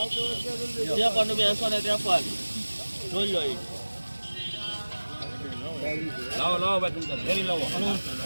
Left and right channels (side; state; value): both; inverted; correlation -1.00